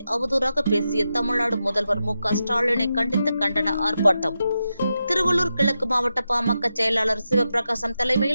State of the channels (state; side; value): inverted; both; correlation -0.89